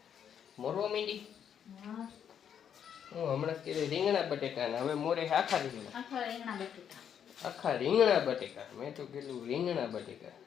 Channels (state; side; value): quieter; right; 8.5 dB